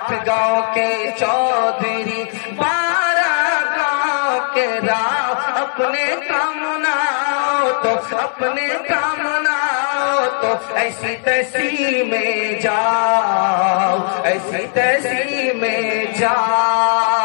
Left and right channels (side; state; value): right; silent; 62 dB below the other